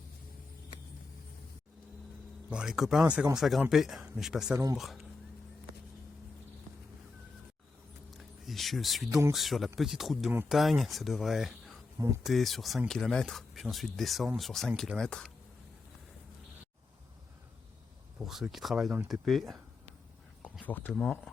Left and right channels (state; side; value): quieter; right; 3.9 dB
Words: Bon, les copains, ça commence à grimper, mais je passe à l'ombre. Et je suis donc sur la petite route de montagne. Ça devrait monter sur 5 km, puis ensuite descendre sur 5 km. Pour ceux qui travaillent dans le TP, confortement.